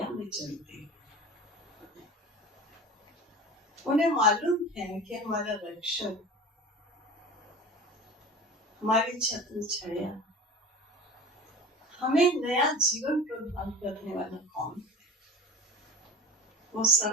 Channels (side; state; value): both; normal; correlation 0.36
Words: में चलते हैं। उन्हें मालूम है कि हमारा रक्षक, हमारी छत्र छाया, हमें नया जीवन प्रदान करने वाला कौन है? वो